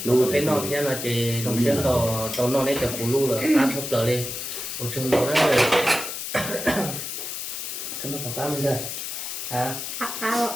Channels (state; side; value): noise; left; hiss, 6 dB below the sound